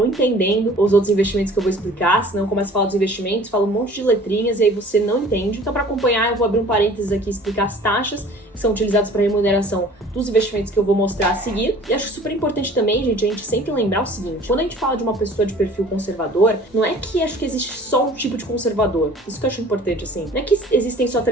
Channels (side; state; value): both; normal; correlation 0.49